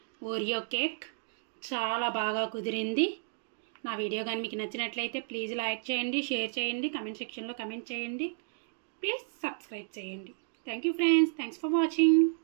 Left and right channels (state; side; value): silent; left; digital silence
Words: ఓరియో కేక్ చాలా బాగా కుదిరింది. నా వీడియో కానీ మీకు నచ్చినట్లయితే ప్లీజ్ లైక్ చేయండి, షేర్ చేయండి, కమెంట్ సెక్షన్లో కమెంట్ చేయండి, ప్లీజ్ సబ్స్క్రైబ్ చేయండి. Thank you friends. Thanks for watching.